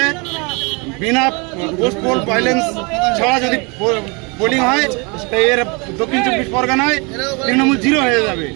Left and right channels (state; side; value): quieter; left; 30.3 dB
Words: বিনা পোস্ট পোল ভাইলেন্স ছাড়া যদি পোলিং হয় তাই এর দক্ষিণ 24 পরগনায় তৃণমূল 0 হয়ে যাবে।